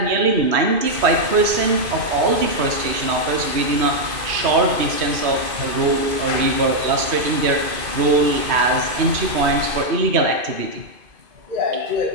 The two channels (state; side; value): late; left; 2.5 ms